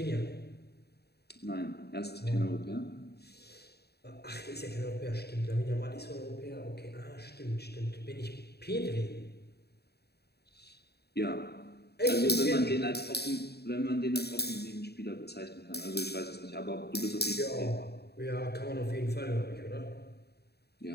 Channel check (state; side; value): late; right; 0.47 ms